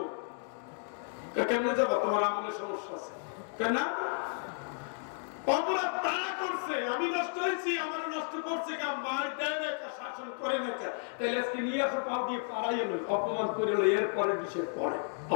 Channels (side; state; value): right; silent; 56 dB below the other